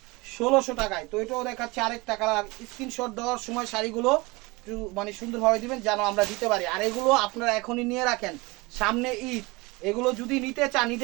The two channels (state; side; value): quieter; left; 24.3 dB